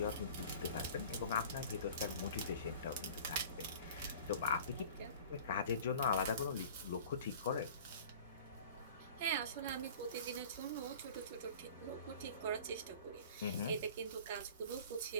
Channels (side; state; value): both; inverted; correlation -0.43